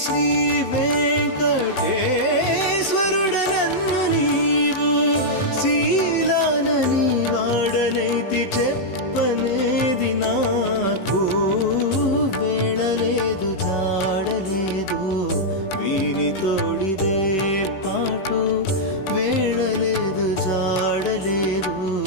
శ్రీ వెంకటేశ్వరుడ నన్ను నీవు శీలానని వాడనైతి చెప్పనేది నాకు వేళలేదు జాడలేదు వీని తోడిదే పాటు వేళలేదు జాడలేదు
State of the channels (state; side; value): late; right; 16 ms